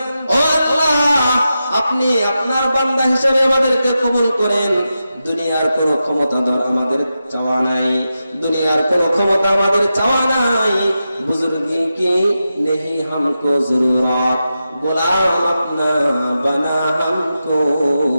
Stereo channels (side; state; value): both; inverted; correlation -0.90